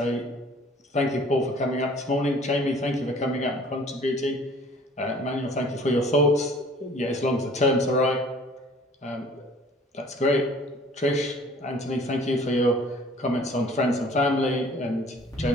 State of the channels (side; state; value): both; normal; correlation 0.52